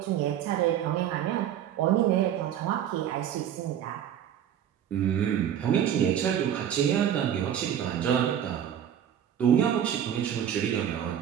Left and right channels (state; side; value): quieter; left; 9.9 dB